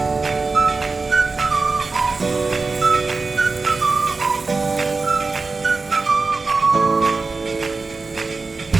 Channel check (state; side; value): quieter; left; 4.0 dB